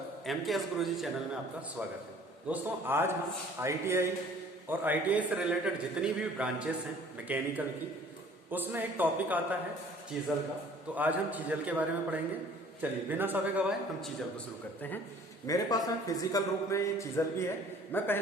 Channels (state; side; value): normal; both; correlation 0.52